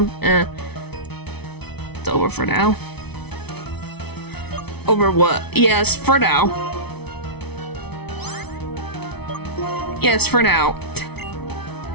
It's over for now. Over what? Yes, for now. Yes, for now.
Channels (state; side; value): late; right; 0.99 ms